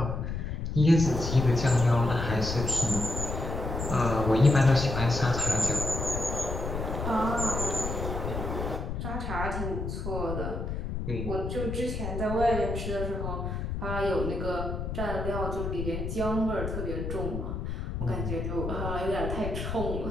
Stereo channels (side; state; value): left; noise; rumble, 4 dB below the sound